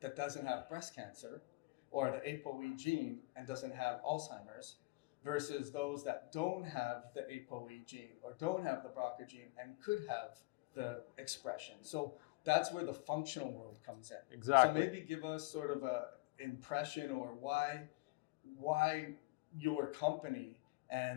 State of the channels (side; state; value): right; quieter; 23.8 dB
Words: doesn't have breast cancer, or the ApoE gene and doesn't have Alzheimer's, versus those that don't have the ApoE gene or don't have the BRCA gene and could have the expression. So that's where the functional world comes in. Exactly. So maybe give us sort of a impression or why your company